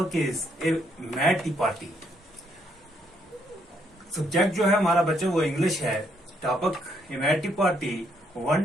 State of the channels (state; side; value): normal; both; correlation 0.72